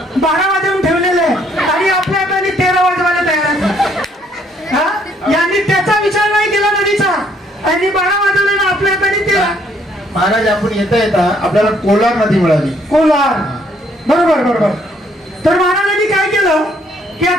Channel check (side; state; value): both; normal; correlation 0.67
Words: 12 वाजवून ठेवलेले आहे आणि आपल्या हाताने 13 वाजवायला तयार आहे. हा, यांनी त्याचा विचार नाही केला नदीचा आणि 12 वाजवले ना आपल्या हाताने 13. महाराज आपण येता येता आपल्याला कोलार नदी मिळाली. कोलार, बरोबर बरोबर. तर महाराजांनी काय केलं की